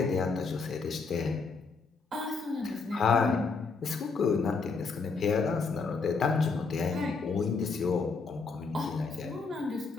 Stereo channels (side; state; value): right; quieter; 4.5 dB